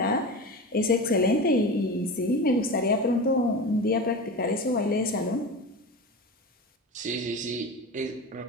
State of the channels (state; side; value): normal; both; correlation 0.28